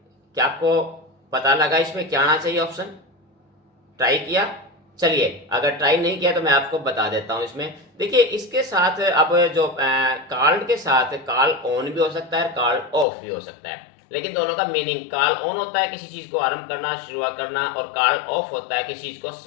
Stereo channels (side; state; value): right; drops out; at 13.1 s